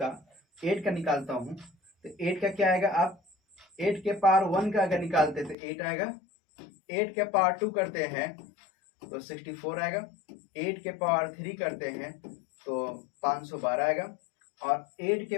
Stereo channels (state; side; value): drops out; right; at 5.6 s